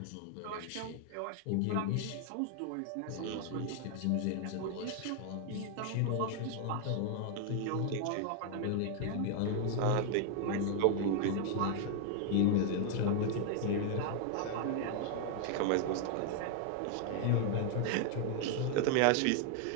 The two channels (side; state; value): both; different; correlation 0.00